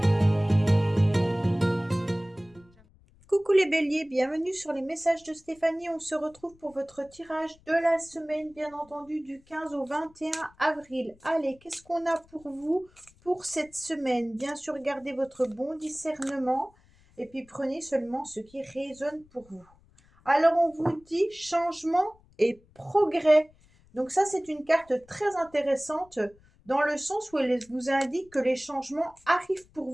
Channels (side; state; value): left; noise; rumble, 29 dB below the sound